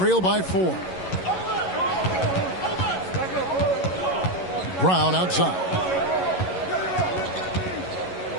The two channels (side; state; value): right; late; 11 ms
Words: by 4. Brown outside.